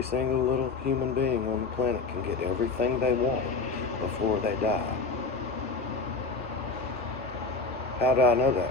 single little human being on the planet can get everything they want before they die. How do I know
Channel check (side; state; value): right; quieter; 3.9 dB